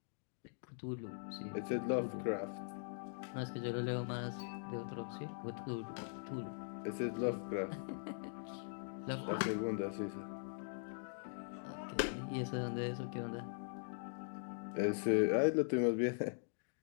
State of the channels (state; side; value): silent; right; digital silence